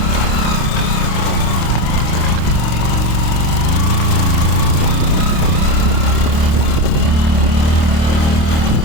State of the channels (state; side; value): late; right; 26 ms